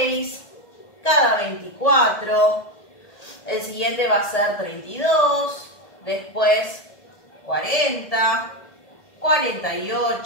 cada 24, el siguiente va a ser 32, después 40,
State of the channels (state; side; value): late; right; 1.7 ms